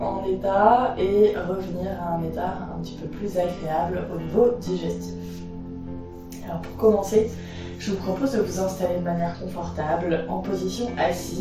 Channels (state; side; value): identical; both; correlation 1.00